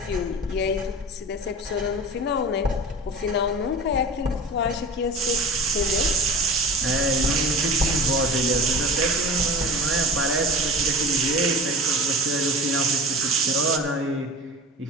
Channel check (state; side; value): normal; both; correlation 0.34